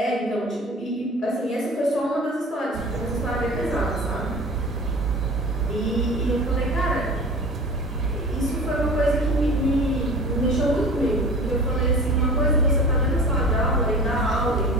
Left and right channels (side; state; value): both; normal; correlation 0.39